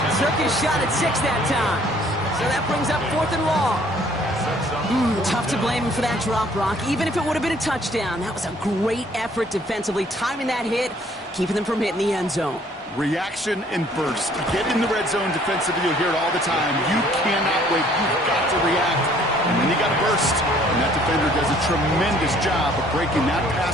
Took his shot at 6 that time. So that brings up 4th and long. Tough to blame him for that drop, Brock. Even if it would have been a touchdown, that was a great effort defensively, timing that hit, keeping them from hitting the end zone. Reaction and burst. Get in the red zone defensively. You'll hear it all the time. You cannot wait. You've got to react. And then you got to burst. And that defender does a tremendous job of breaking that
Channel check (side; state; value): both; normal; correlation 0.59